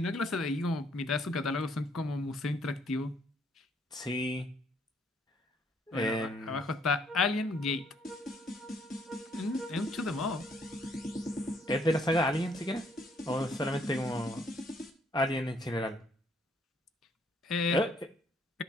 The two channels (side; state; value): both; normal; correlation 0.67